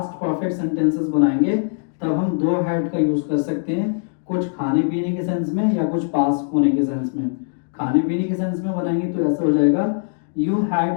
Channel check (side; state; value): right; silent; digital silence